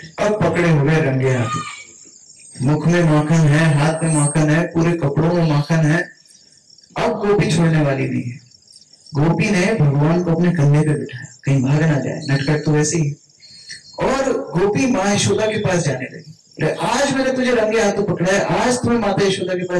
अब पकड़े हुए रंगे हाथ, मुख में माखन है, हाथ में माखन है, पूरे कपड़ों में माखन है। अब गोपी छोड़ने वाली नहीं है, गोपी ने भगवान को अपने कंधे पे बिठाया, कहीं भाग ना जाए, नटखट तो वैसे ही। और गोपी माँ यशोदा के पास जाने लगी, आज मैंने तुझे रंगे हाथों पकड़ा है, आज तुम्हें माता यशोदा के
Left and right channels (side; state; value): both; identical; correlation 1.00